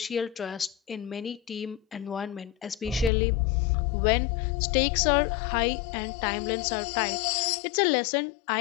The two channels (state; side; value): drops out; right; at 3.1 s